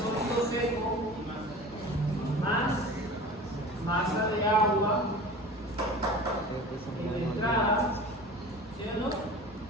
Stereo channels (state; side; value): normal; both; correlation 0.38